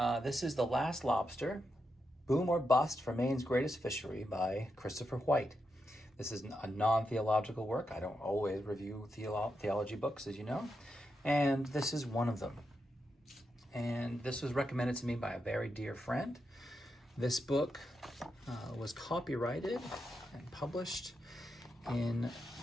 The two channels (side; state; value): both; normal; correlation 0.85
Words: This is The Last Lobster, Boom or Bust for Maine's Greatest Fishery by Christopher White. This is a non-theological work. I don't always review theology books, as you know, and this is one of them. And this was recommended to me by a very dear friend. This book was copyrighted and published in